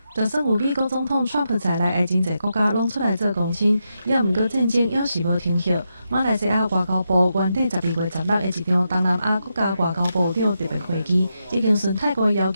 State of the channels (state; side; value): inverted; both; correlation -0.85